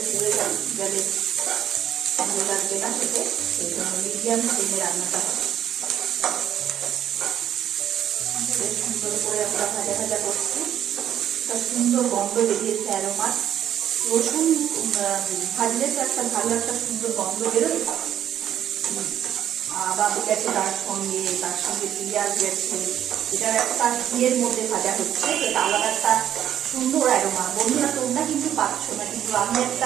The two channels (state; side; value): quieter; left; 10.6 dB